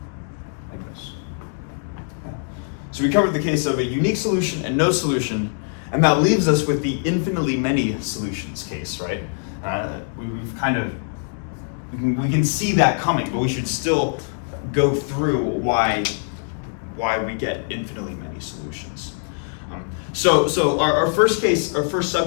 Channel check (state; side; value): silent; right; 64 dB below the other